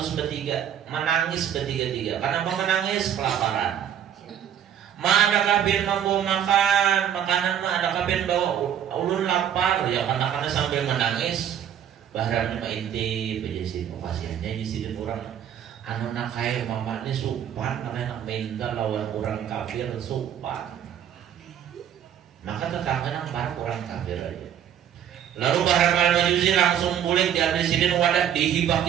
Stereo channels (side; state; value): left; quieter; 9.6 dB